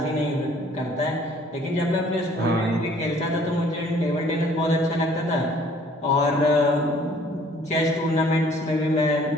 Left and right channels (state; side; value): normal; both; correlation 0.57